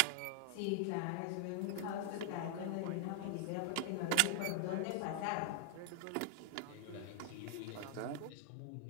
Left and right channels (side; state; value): both; different; correlation 0.00